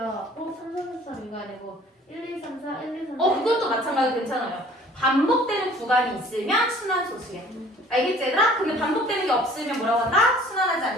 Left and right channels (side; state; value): both; normal; correlation 0.52